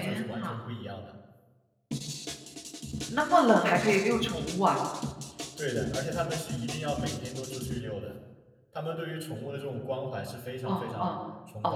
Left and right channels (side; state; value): both; identical; correlation 1.00